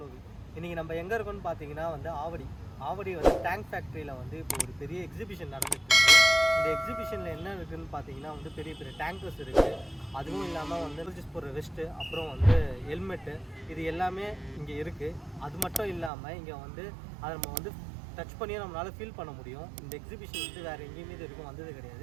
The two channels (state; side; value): drops out; left; at 16.1 s